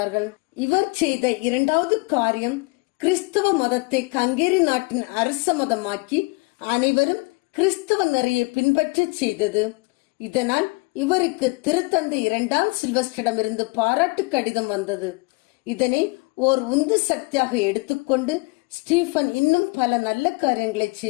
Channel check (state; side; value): quieter; right; 28.1 dB